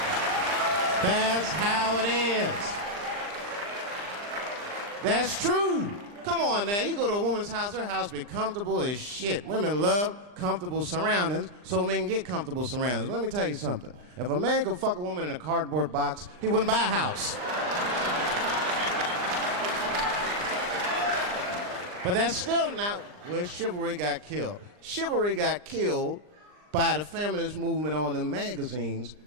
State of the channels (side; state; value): left; late; 39 ms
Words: That's how it is. That's true. Come on now, you go to a woman's house, her house be comfortable as shit. Women love comfortable surroundings, so men get comfortable surroundings. But let me tell you something. If a man could fuck a woman in a cardboard box, he wouldn't buy a house. But that's still not where chivalry got killed. Chivalry got killed by the feminist movement on the magazines